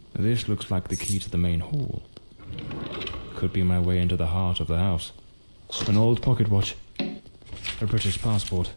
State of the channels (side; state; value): both; inverted; correlation -1.00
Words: This looks like the key to the main hall. Could be my way into the heart of the house. An old pocket watch. A British passport.